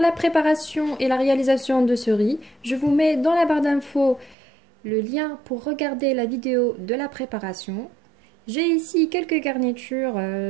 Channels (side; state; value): left; drops out; at 4.4 s